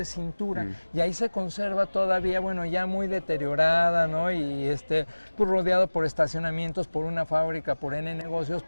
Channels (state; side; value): inverted; both; correlation -1.00